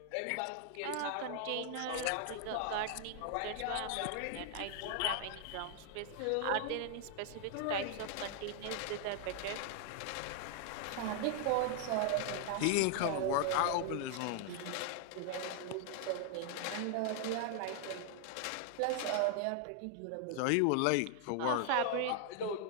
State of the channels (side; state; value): both; different; correlation 0.00